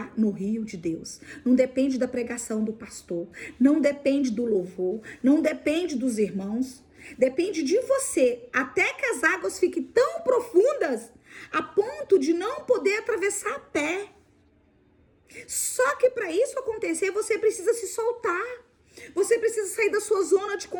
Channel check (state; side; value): identical; both; correlation 1.00